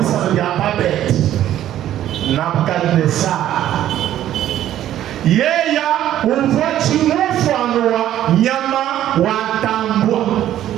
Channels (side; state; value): left; quieter; 12.2 dB